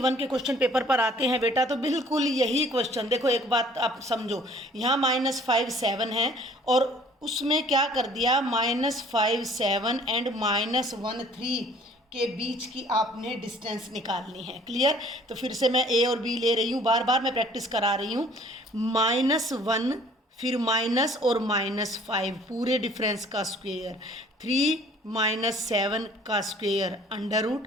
के क्वेश्चन पेपर पर आते हैं बेटा, तो बिल्कुल यही क्वेश्चन देखो, एक बात आप समझो, यहाँ -5 7 है और उसमें क्या कर दिया, -5 7 एंड -1 3 के बीच की आपने डिस्टेंस निकालनी है। क्लियर? तो फिर से मैं a और b ले रही हूँ, बार बार मैं प्रैक्टिस करा रही हूँ। -1 फिर माइनस और -5 पूरे डिफरेंस का स्क्वायर, 3 - 7 का square under root,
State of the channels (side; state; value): both; normal; correlation 0.54